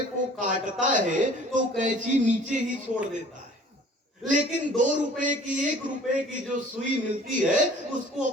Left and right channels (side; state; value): both; normal; correlation 0.50